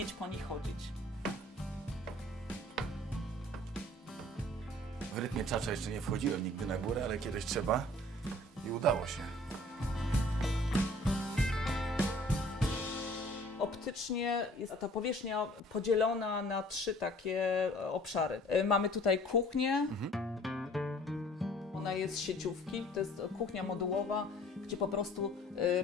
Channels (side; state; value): both; normal; correlation 0.52